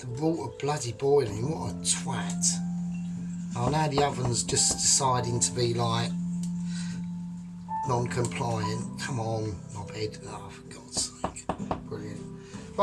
water bloody boiling. What a twat. Oh, now the oven's just deciding to be like non-compliant. Come on, knobhead. Oh, for God's sake. Brilliant.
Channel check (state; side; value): identical; both; correlation 1.00